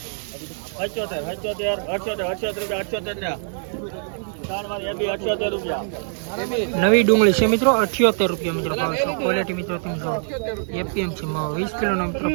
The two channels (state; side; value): silent; left; 57 dB below the other